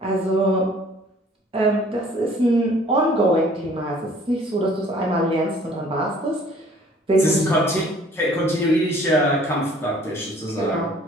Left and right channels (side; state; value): both; normal; correlation 0.55